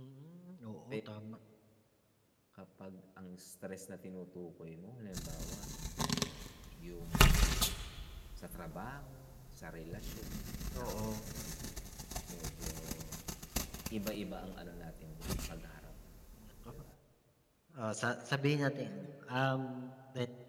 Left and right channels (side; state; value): both; identical; correlation 1.00